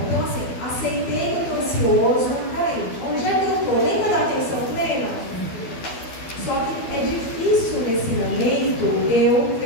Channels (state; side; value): late; right; 12 ms